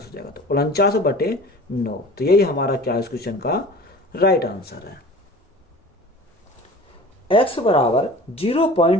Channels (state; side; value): normal; both; correlation 0.41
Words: जाएगा। तो 49/9, तो यही हमारा क्या है इस क्वेश्चन का राइट आंसर है। x बराबर